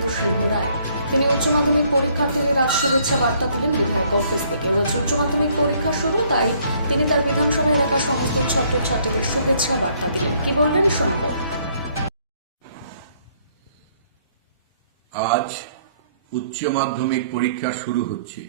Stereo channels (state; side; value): inverted; both; correlation -0.65